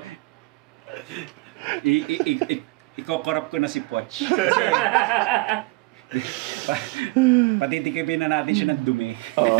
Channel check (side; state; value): left; quieter; 23.7 dB